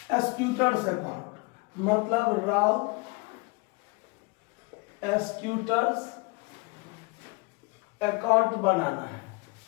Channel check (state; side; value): quieter; right; 28.1 dB